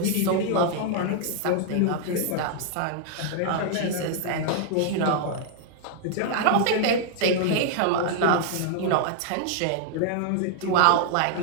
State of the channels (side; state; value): both; different; correlation -0.01